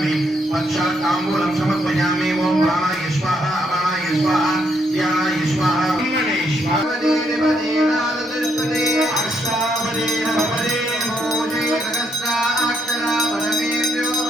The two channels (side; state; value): both; normal; correlation 0.75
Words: पक्षात् ताम्बूलं समर्पयामि। ओम प्राणाय स्वाहा अपानाय स्वाहा ध्यानाय स्वाहा ब्रह्मणे स्वाहा देवदेनादतिष्ठते अष्टावदे नवपदे मोजे सहस्रा अक्षरा वरमेभ्यो